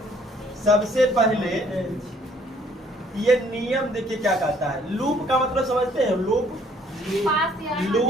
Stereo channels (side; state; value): both; normal; correlation 0.61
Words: सबसे पहले ये नियम देखिए क्या कहता है। लूप का मतलब समझते हैं?